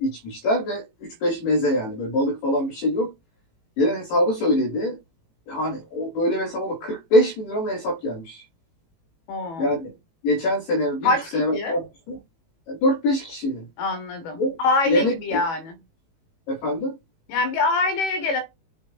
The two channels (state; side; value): late; right; 18 ms